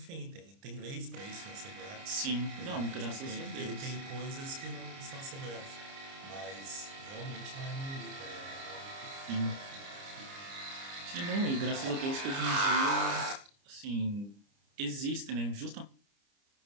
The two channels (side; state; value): left; late; 30 ms